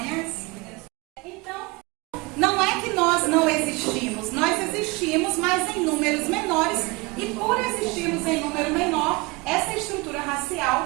Então, não é que nós não existimos, nós existimos, mas em números menores, e por existirmos em número menor, essa estrutura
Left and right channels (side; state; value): left; quieter; 25.1 dB